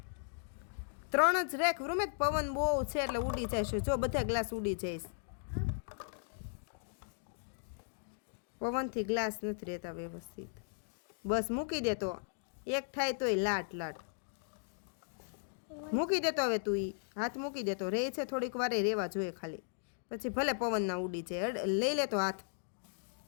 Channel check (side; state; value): right; silent; digital silence